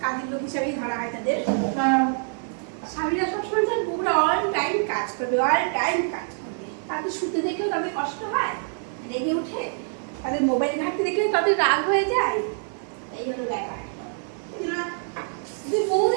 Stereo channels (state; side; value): silent; left; digital silence